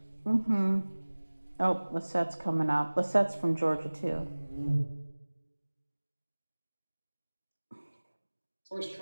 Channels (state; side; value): inverted; both; correlation -1.00